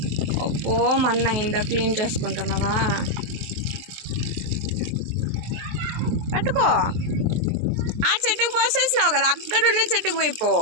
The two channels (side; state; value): left; late; 23 ms